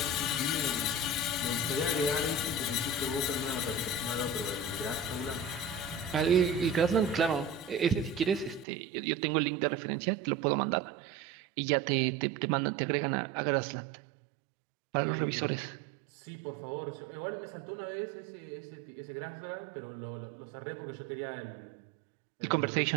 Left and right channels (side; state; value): left; drops out; at 8.7 s